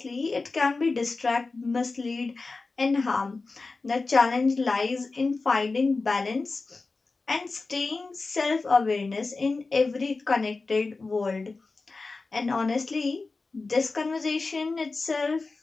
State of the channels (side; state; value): right; quieter; 3.8 dB